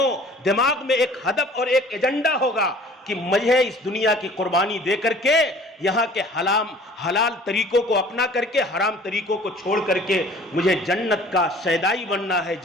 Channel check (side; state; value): both; normal; correlation 0.50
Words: دماغ میں ایک ہدف اور ایک ایجنڈا ہوگا کہ مجھے اس دنیا کی قربانی دے کر کے یہاں کے حلال طریقوں کو اپنا کر کے حرام طریقوں کو چھوڑ کر کے مجھے جنت کا شیدائی بننا ہے،